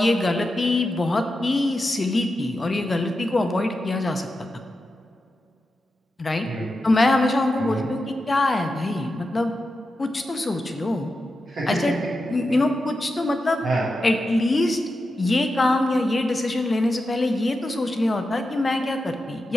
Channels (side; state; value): both; normal; correlation 0.89